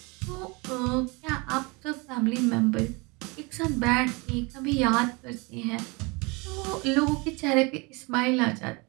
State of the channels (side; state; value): left; quieter; 27.9 dB